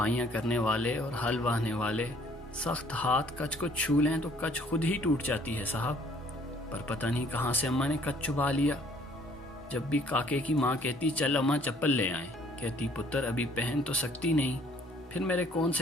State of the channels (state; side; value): normal; both; correlation 0.60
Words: करने वाले और हल वाहने वाले सख्त हाथ कच को छू लें तो कच खुद ही टूट जाती है साहब। पर पता नहीं कहाँ से अम्मा ने कच चुबा लिया। जब भी काके की माँ कहती चल अम्मा चप्पल ले आए, कहती पुत्र अभी पहन तो सकती नहीं। फिर मेरे कौन